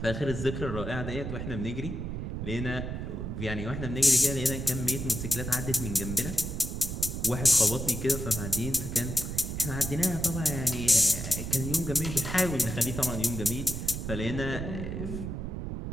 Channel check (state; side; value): noise; right; rumble, 5 dB below the sound